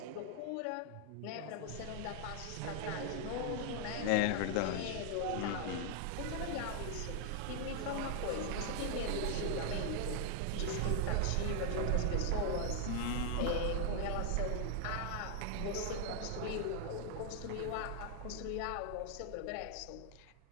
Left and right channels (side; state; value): both; different; correlation 0.00